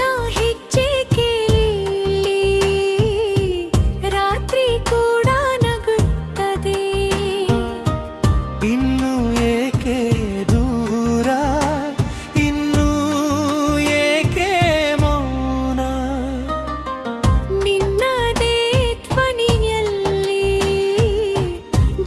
ಇನ್ನು ಏಕೆ ದೂರ ಇನ್ನು ಏಕೆ ಮೌನ ನಿನ್ನದೇ ಧ್ವನಿಯಲ್ಲಿ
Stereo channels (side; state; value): both; identical; correlation 1.00